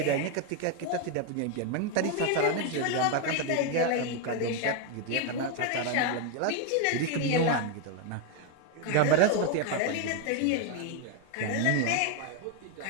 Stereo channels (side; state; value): both; different; correlation 0.01